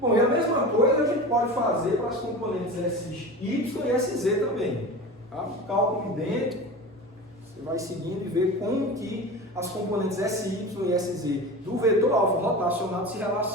Bom, e a mesma coisa a gente pode fazer para as componentes SY e SZ também. Tá? Cálculo idêntico, você vai seguindo e vê como que as componentes SY e SZ do vetor alfa rotacionado se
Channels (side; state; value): both; normal; correlation 0.31